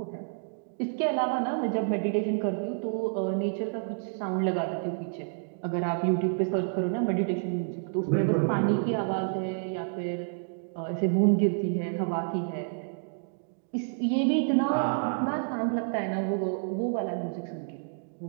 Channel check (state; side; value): silent; left; digital silence